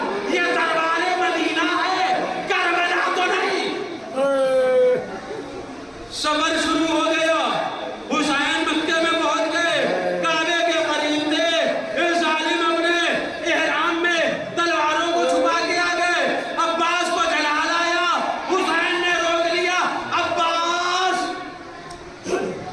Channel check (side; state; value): both; identical; correlation 1.00